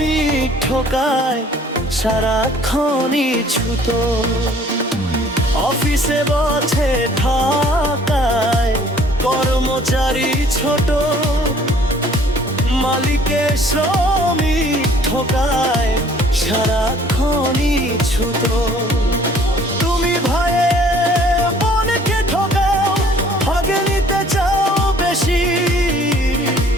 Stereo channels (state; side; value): normal; both; correlation 0.56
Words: ঠকায় সারাক্ষণই ছুত। অফিসে বসে ঠকায় কর্মচারী ছোট, মালিকে শ্রমিক ঠকায় সারাক্ষণই ছুত। তুমি ভয়ে বোনকে ঠকাও, ভাগে নিতে চাও বেশি,